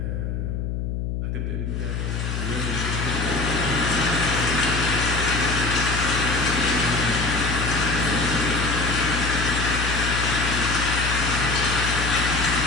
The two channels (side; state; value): left; noise; hum, 3 dB below the sound